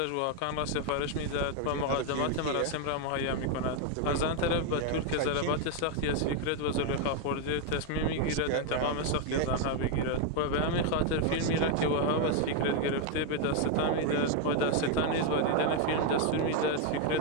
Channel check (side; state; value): both; different; correlation 0.01